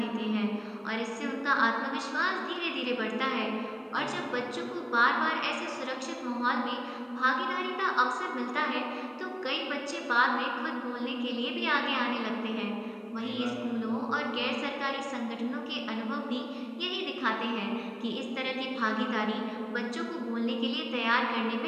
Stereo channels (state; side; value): identical; both; correlation 1.00